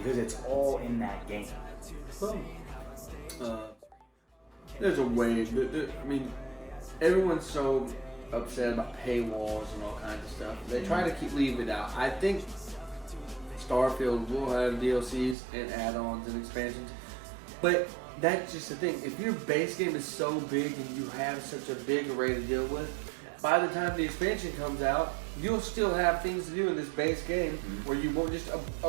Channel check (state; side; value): drops out; left; at 15.4 s